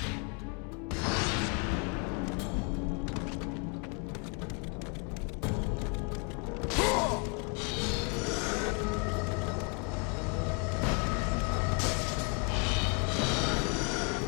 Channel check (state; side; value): quieter; right; 35.5 dB